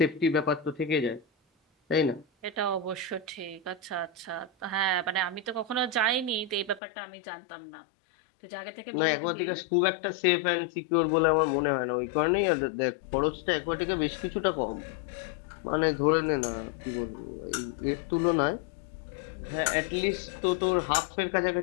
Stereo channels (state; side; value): drops out; right; at 6.8 s